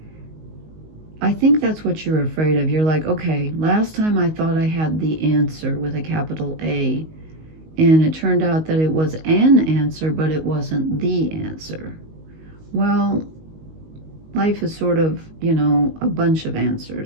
I think that's what you're afraid of. You're like, okay, last time I thought I had the answer with a capital A, and it turned out that it was an answer, but it wasn't the answer. Well, life is sort of, you know, a bunch of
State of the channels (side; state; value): left; late; 19 ms